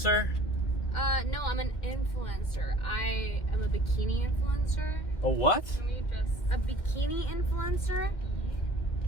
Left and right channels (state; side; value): late; right; 2.1 ms